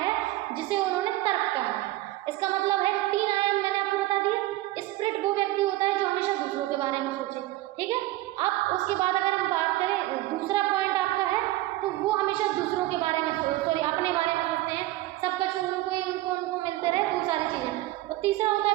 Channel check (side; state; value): left; quieter; 17.1 dB